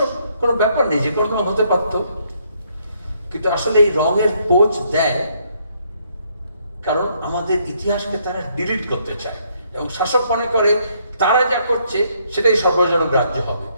কোনো ব্যাপার নেই, যে কোনো রঙ হতে পারতো। কিন্তু আসলে এই রঙের পোজ দেয় কারণ আমাদের ইতিহাসকে তারা ডিলিট করতে চায়, এবং শাসক মনে করে তারা যা করছে সেটাই সর্বজনগ্রাহ্য হবে।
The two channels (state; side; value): inverted; both; correlation -0.70